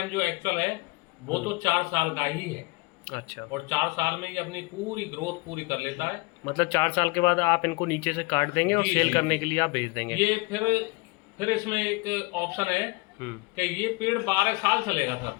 जो एक्चुअल है वो तो 4 साल का ही है। अच्छा। और 4 साल में ये अपनी पूरी ग्रोथ पूरी कर लेता है। मतलब 4 साल के बाद आप इनको नीचे से काट देंगे और जी, सेल जी, करने जी। के लिए आप भेज देंगे? ये फिर इसमें एक ऑप्शन है कि ये पेड़ 12 साल चलेगा सर।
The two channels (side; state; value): right; quieter; 25.5 dB